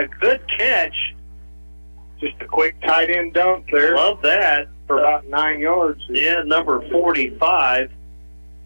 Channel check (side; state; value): both; inverted; correlation -1.00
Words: good catch. just a quick tight end dunk there. Love that. For about 9 yards. Yeah, number 45.